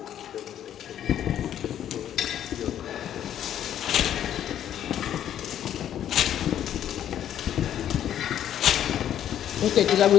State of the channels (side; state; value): right; quieter; 10.6 dB